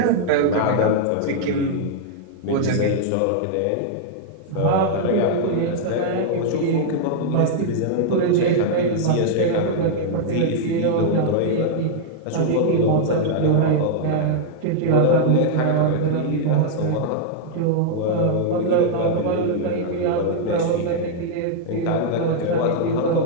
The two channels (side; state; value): both; different; correlation -0.01